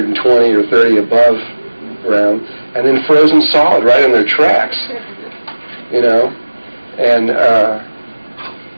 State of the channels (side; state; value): both; inverted; correlation -1.00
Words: or 30 above ground, and then frozen solid right in their tracks, you know. And